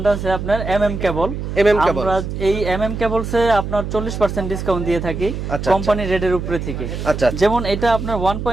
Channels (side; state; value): right; noise; hum, 5 dB below the sound